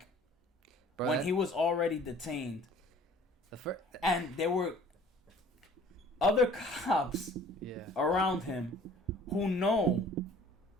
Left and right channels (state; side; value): normal; both; correlation 0.51